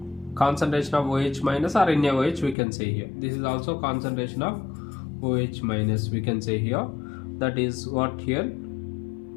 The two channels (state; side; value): drops out; right; at 2.6 s